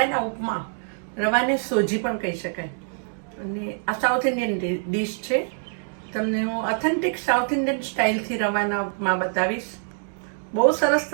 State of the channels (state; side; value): silent; left; digital silence